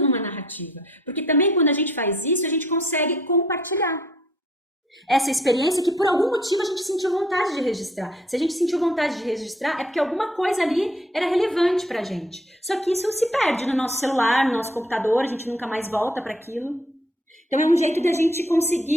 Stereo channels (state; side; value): normal; both; correlation 0.62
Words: narrativa. Porque também quando a gente faz isso, a gente consegue compartilhar essa experiência que por algum motivo a gente sentiu vontade de registrar. Se a gente sentiu vontade de registrar, é porque alguma coisa ali era relevante pra gente. Só que isso se perde no nosso celular, no nosso computador, a gente nunca mais volta para aquilo. Então é um jeito de a gente